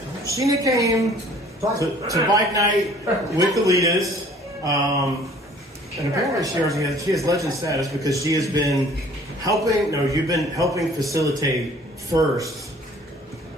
came to bike night with the Litas. And apparently she has legend status because she has been helping. No, you've been helping facilitate first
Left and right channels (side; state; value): both; normal; correlation 0.53